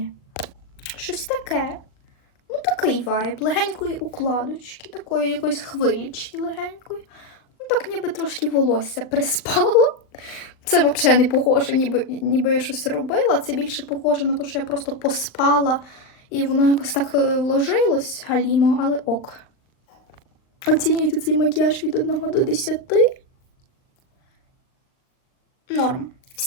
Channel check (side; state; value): right; late; 39 ms